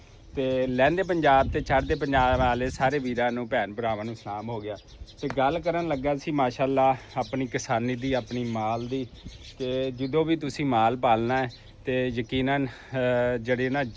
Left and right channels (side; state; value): both; identical; correlation 1.00